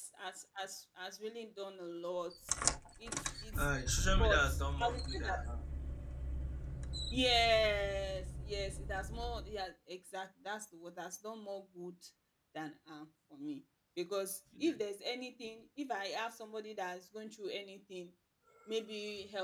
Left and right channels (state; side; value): identical; both; correlation 1.00